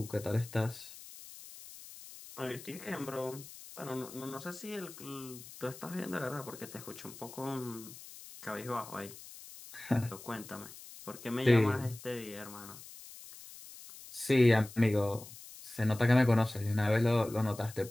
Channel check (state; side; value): noise; left; hiss, 16 dB below the sound